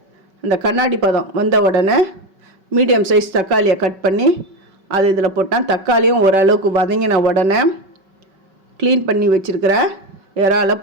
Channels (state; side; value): late; left; 5.3 ms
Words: அந்த கண்ணாடி பதம் வந்த உடனே மீடியம் சைஸ் தக்காளியை கட் பண்ணி அது இதில் போட்டேன். தக்காளியும் ஓரளவுக்கு வதங்கின உடனே க்ளீன் பண்ணி வச்சுருக்கிற இறாலை